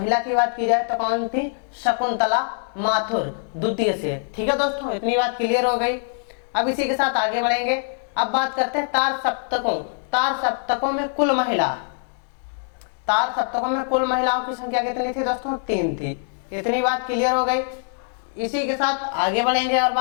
की बात की जाए तो कौन थी? शकुंतला माथुर द्वितीय से। ठीक है दोस्तों, इतनी बात क्लियर हो गई। अब इसी के साथ आगे बढ़ेंगे। अब बात करते हैं तार सप्तकों। तार सप्तकों में कुल महिला, तार सप्तकों में कुल महिलाओं की संख्या कितनी थी दोस्तों? 3 थी। इतनी बात क्लियर हो गई। इसी के साथ आगे बढ़ेंगे और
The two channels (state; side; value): silent; right; 62 dB below the other